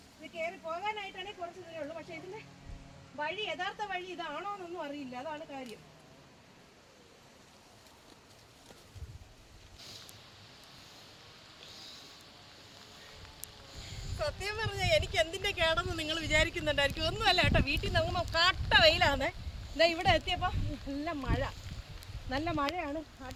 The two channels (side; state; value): both; identical; correlation 1.00